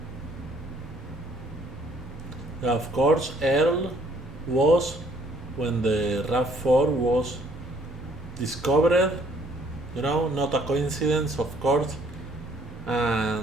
Of course, Earl was, when the RAV4 was discovered, not a coincidence, of course,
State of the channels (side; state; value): both; normal; correlation 0.63